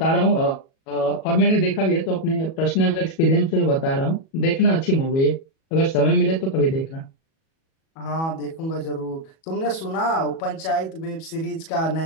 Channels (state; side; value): late; right; 37 ms